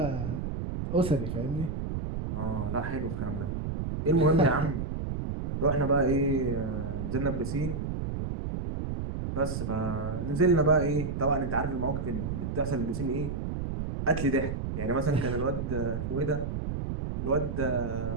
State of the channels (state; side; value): noise; right; rumble, 3 dB below the sound